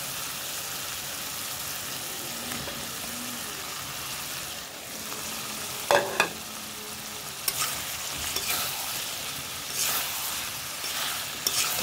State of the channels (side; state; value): both; identical; correlation 1.00